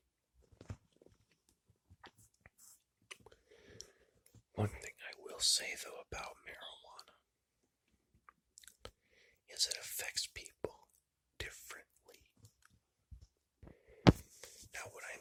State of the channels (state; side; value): identical; both; correlation 1.00